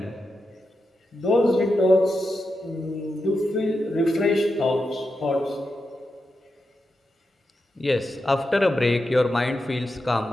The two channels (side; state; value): both; normal; correlation 0.88